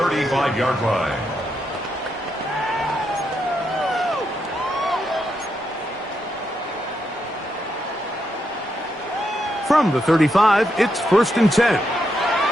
line. From the 35, it's first and 10.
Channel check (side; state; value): both; normal; correlation 0.81